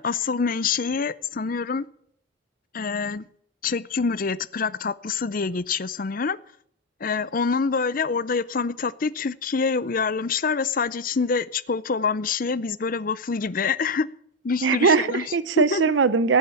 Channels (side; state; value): both; normal; correlation 0.07